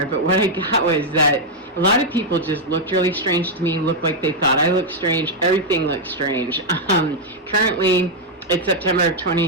but what I got was that a lot of people just looked really strange to me, looked like they thought I looked strange. Everything looked strange. Currently, it's September of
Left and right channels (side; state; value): both; normal; correlation -0.01